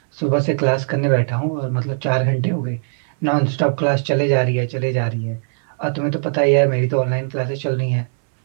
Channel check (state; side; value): silent; left; 66 dB below the other